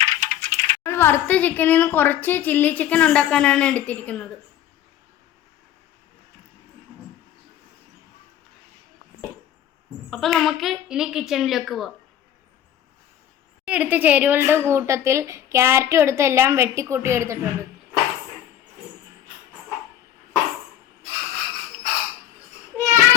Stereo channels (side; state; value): right; quieter; 11.2 dB